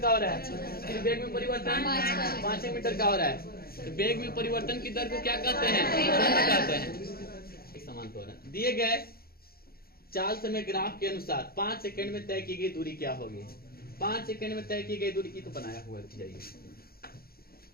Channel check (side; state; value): right; late; 0.44 ms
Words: हो रहा है। फिर वेग में परिवर्तन 5 मीटर का हो रहा है। तो वेग में परिवर्तन की दर को क्या कहते हैं? त्वरण कहते हैं। एक समान त्वरण। दिए गए 4 समय ग्राफ के अनुसार 5 सेकंड में तय की गई दूरी क्या होगी? 5 सेकंड में तय की गई दूरी की तो बनाया हुआ है।